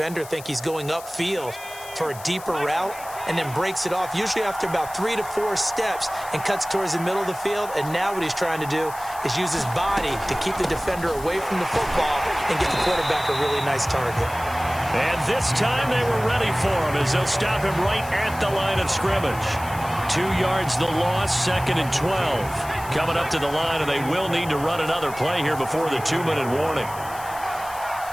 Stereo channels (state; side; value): noise; left; hiss, 16 dB below the sound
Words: think he's going upfield for a deeper route and then breaks it off, usually after about 3 to 4 steps, and cuts towards the middle of the field. And now what he's trying to do is use his body to keep the defender away from the football and get the quarterback a really nice target. And this time they were ready for him as they'll stop him right at the line of scrimmage. 2 yards the loss, 2nd and 12. Coming up to the line, and they will need to run another play here before the 2-minute warning.